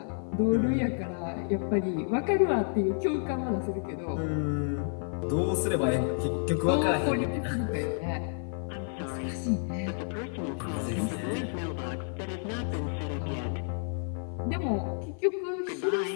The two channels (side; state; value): right; silent; 57 dB below the other